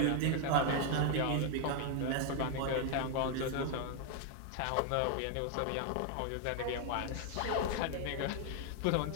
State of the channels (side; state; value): both; different; correlation 0.00